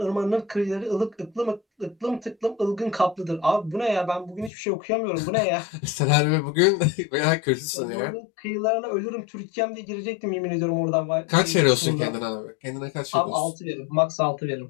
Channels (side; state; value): right; drops out; at 4.5 s